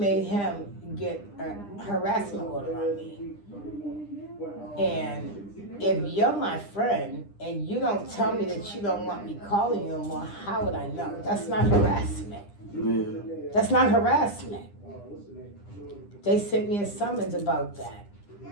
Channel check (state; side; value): late; right; 9.9 ms